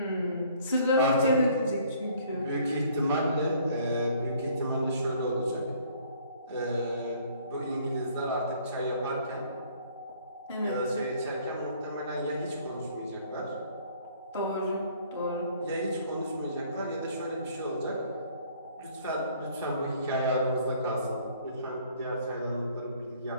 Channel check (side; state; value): both; inverted; correlation -0.58